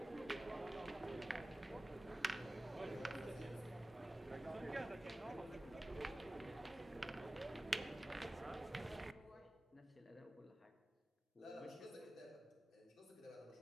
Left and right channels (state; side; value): normal; both; correlation 0.97